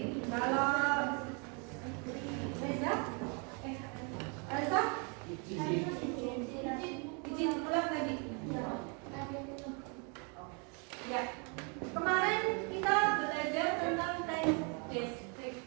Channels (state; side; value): quieter; left; 35.1 dB